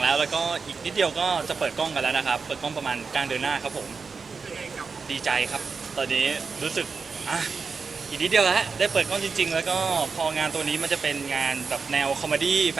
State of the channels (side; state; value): left; quieter; 5.0 dB